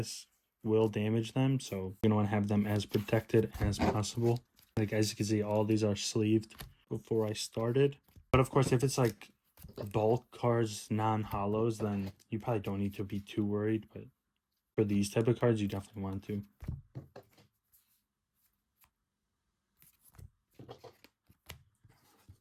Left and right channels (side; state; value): both; identical; correlation 1.00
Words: will damage them. So you're going to want to have them as protected as possible. Like, as you can see, all these are sleeved before I started. But of course, if it's like bulk cards, non-hollows, then you probably don't need to be too worried. But for these type of cards, you definitely want to.